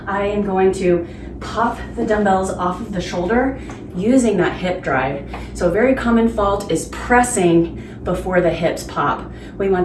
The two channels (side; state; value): both; identical; correlation 1.00